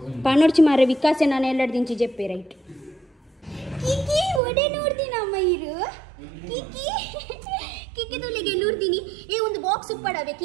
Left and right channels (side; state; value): left; drops out; at 4.4 s